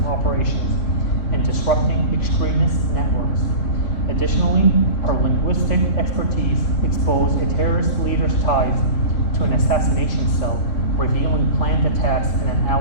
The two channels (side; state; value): right; late; 3.1 ms